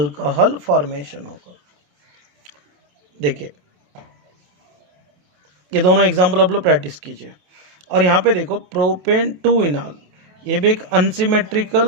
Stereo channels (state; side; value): late; left; 27 ms